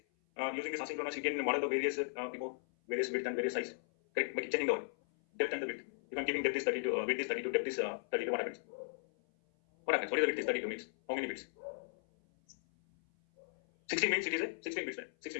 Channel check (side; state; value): right; silent; 53 dB below the other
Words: asynchronous, you can model the various various width and various size. Correct? By changing the what? Depth and the width. If I'm giving depth is 32, width is 32, depth is 32, what happens? What happens? What is the width is 32 means? How many bits? 16 means it is a 16 bits, right?